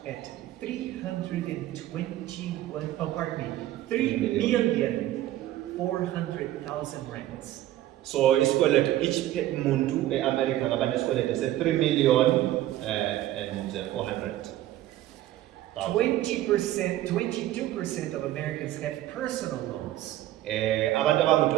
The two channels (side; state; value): left; quieter; 14.2 dB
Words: at 321, oh pardon me, 3,400,000 rands. So isikweletu each muntu eAmerica ngaba nesikweletu se3 million and 400,000. 20%, 22% of Americans have personal loans. Abantu